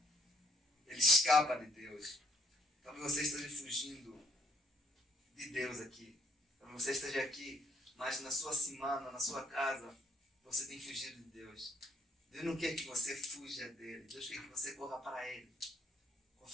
Ele escapa de Deus. Talvez você esteja fugindo de Deus aqui. Talvez você esteja aqui, mas na sua semana, na sua casa, você tem fugido de Deus. Deus não quer que você fuja dele. Deus quer que você corra para ele,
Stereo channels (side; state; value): both; normal; correlation 0.68